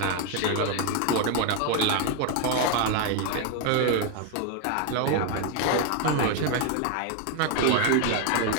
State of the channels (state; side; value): different; both; correlation 0.01